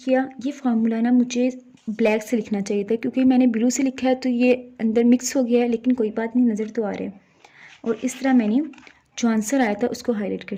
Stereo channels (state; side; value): identical; both; correlation 1.00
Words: किया। ये फार्मूला ना मुझे ब्लैक से लिखना चाहिए था क्योंकि मैंने ब्लू से लिखा है तो ये अंदर मिक्स हो गया है, लेकिन कोई बात नहीं, नज़र तो आ रहा है। और इस तरह मैंने जो आंसर आया था उसको हाईलाइट